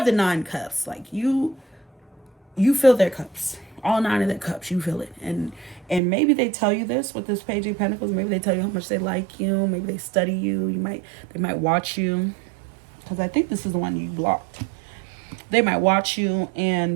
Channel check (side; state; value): left; drops out; at 6.0 s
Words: 9 cups. Like you fill their cups. All 9 of their cups. You fill it. And maybe they tell you this with this Page of Pentacles. Maybe they tell you how much they like you. Maybe they study you. They might watch you. Because I think this is the one you blocked. They might watch you